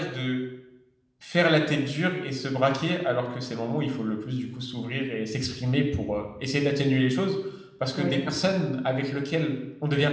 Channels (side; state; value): both; identical; correlation 1.00